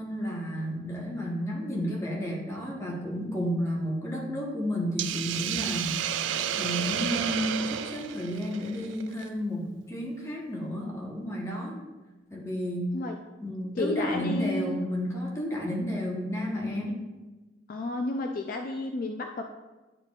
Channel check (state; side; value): normal; both; correlation 0.60